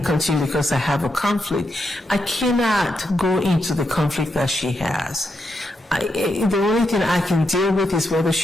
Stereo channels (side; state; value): both; normal; correlation 0.83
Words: continue because I have a conflict, I cannot go into the conflict that she has. The only thing I can deal with is whether